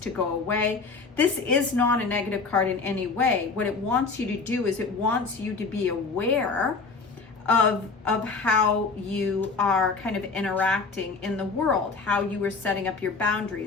go away. This is not a negative card in any way. What it wants you to do is it wants you to be aware of how you are kind of interacting in the world, how you are setting up your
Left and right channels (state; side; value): quieter; right; 4.4 dB